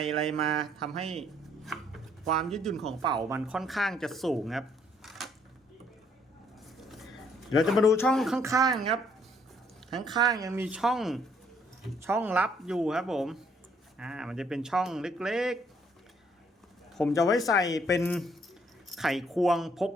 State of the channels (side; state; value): both; normal; correlation 0.66